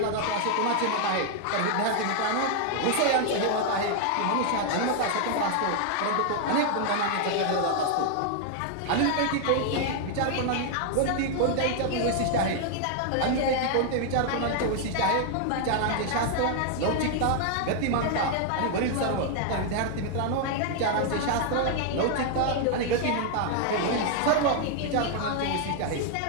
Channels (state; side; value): different; both; correlation 0.00